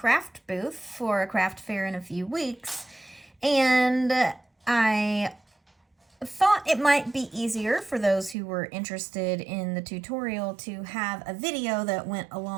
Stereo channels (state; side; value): drops out; left; at 8.3 s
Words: booth for a craft fair in a few weeks. And I thought it might be easier for those who were interested in the tutorial to have a video that went